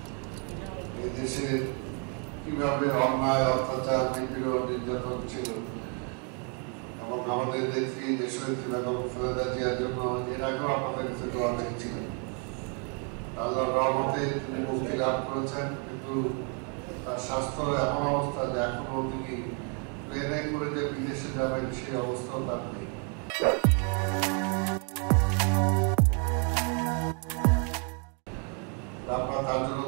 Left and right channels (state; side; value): quieter; left; 38.6 dB